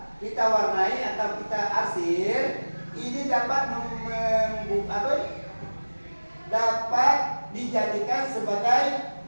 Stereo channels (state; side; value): inverted; both; correlation -1.00